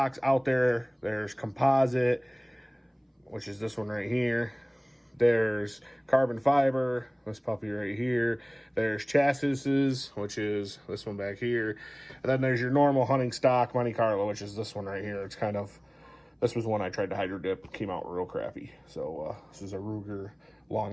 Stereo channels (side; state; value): both; identical; correlation 1.00